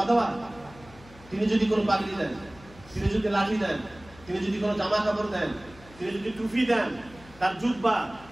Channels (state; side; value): noise; left; hum, 22 dB below the sound